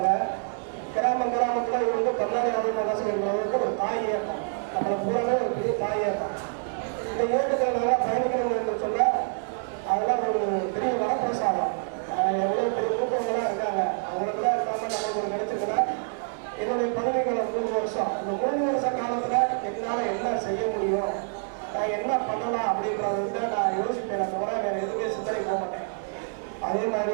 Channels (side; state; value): left; silent; 60 dB below the other